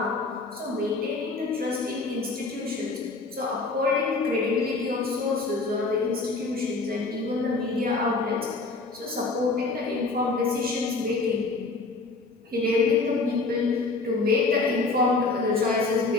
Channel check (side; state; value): right; quieter; 3.7 dB